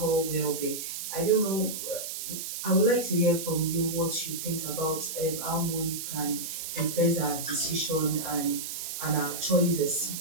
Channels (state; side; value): noise; right; hiss, 6 dB below the sound